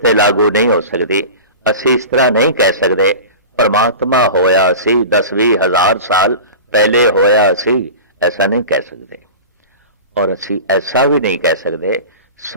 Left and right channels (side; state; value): both; inverted; correlation -0.34